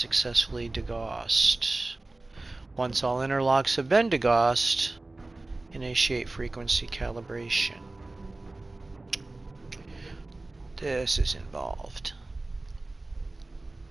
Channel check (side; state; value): left; quieter; 3.0 dB